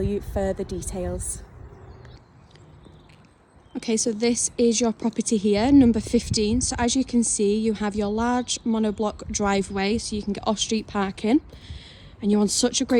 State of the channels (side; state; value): both; identical; correlation 1.00